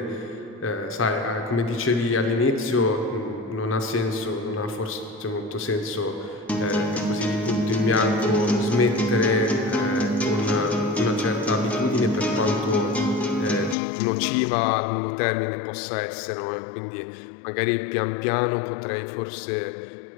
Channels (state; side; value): drops out; right; at 13.8 s